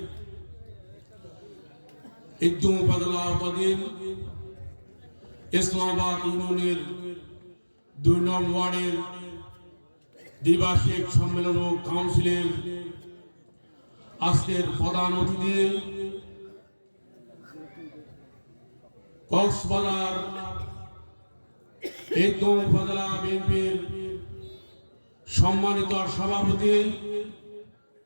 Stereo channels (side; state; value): both; inverted; correlation -1.00